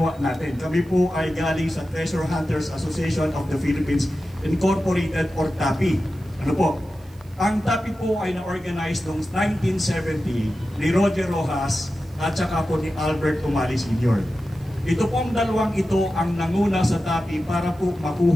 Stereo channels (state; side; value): noise; right; hiss, 29 dB below the sound